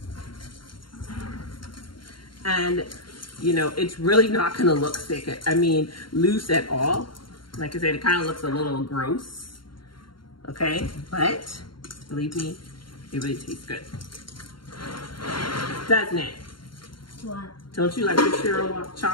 And, you know, it's really not gonna look thick, I mean, loose at all. Like I said, it kind of looks a little gross, okay? But, believe me, it really tastes good. Doesn't it? What? Don't you like the Churro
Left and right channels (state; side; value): late; right; 0.72 ms